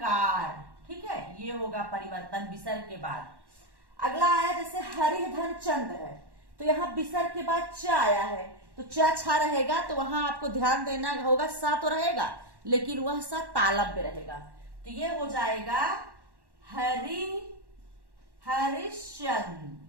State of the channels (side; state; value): left; late; 1.1 ms